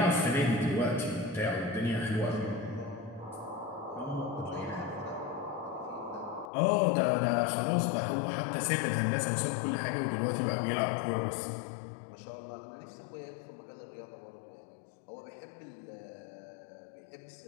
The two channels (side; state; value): right; drops out; at 6.5 s